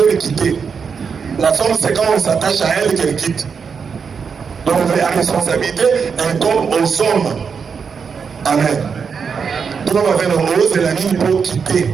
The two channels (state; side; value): quieter; left; 6.0 dB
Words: quitter. La femme, c'est quand on s'attache à elle qu'elle quitte. Donc la responsabilité incombe aux hommes. Amen. Donc on va faire le rose et la ligne pour